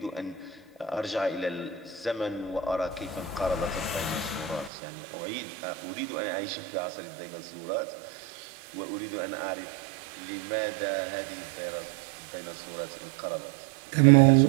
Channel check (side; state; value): left; drops out; at 4.7 s